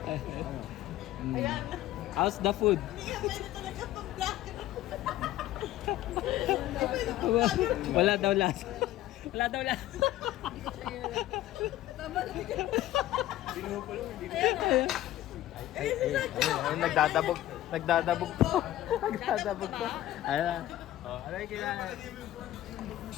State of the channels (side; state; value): right; quieter; 14.3 dB